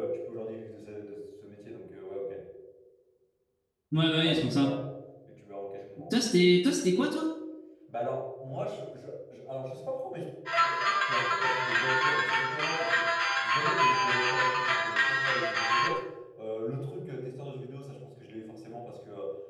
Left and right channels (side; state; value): both; identical; correlation 1.00